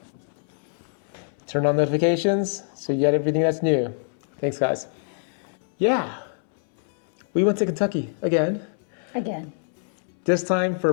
turn on notifications so you get everything that's new. Thanks, guys. Yeah, we went to Kentucky again. This time for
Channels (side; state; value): right; silent; 62 dB below the other